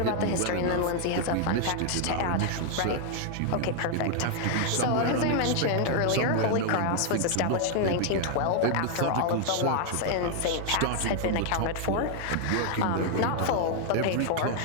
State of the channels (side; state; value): both; different; correlation 0.00